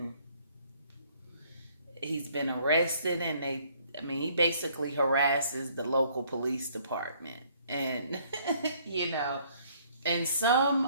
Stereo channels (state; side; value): inverted; both; correlation -0.62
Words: he's been arrested, and he basically harasses the local police department. And you know, and some